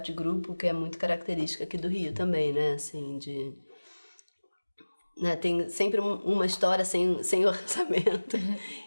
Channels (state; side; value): inverted; both; correlation -1.00